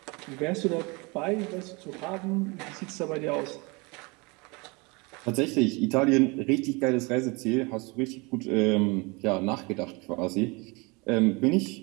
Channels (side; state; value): left; quieter; 27.5 dB